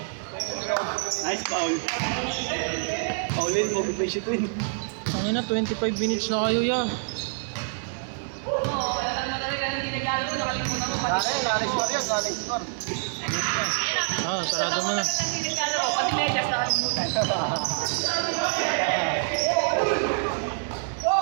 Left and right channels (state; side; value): silent; left; digital silence